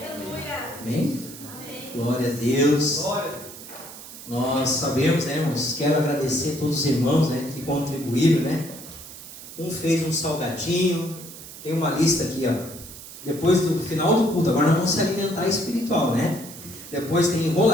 Amém? Amém. Glória a Deus. Glória. Nós sabemos, né, irmãos? Quero agradecer a todos os irmãos, né, que contribuíram, né? Um fez um salgadinho. Tem uma lista aqui, ó. Depois do final do culto, agora nós vamos se alimentar espiritual, né? Depois tem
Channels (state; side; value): noise; right; hiss, 14 dB below the sound